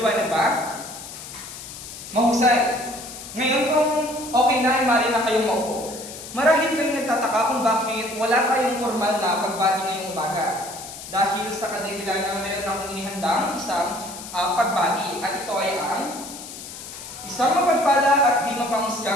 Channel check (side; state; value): left; noise; hiss, 12 dB below the sound